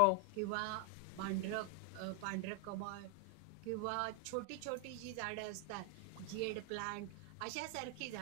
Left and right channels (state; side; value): different; both; correlation 0.00